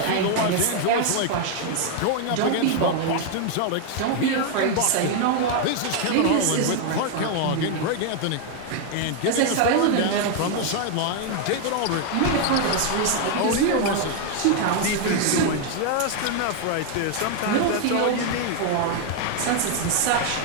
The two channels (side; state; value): both; different; correlation 0.00